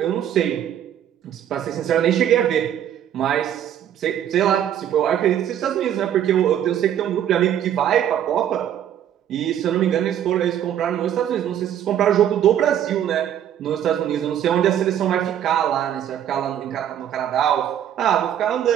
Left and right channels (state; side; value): quieter; left; 10.3 dB